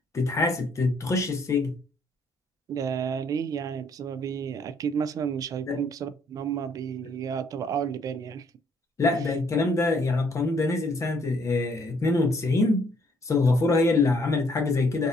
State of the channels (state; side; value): normal; both; correlation 0.66